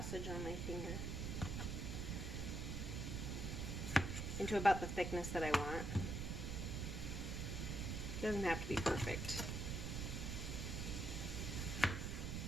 on my finger. Into about the thickness that I want. It doesn't have to be perfect.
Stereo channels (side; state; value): right; noise; rumble, 2 dB below the sound